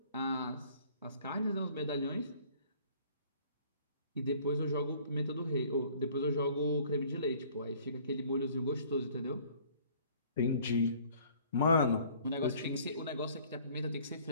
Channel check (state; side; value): inverted; both; correlation -0.55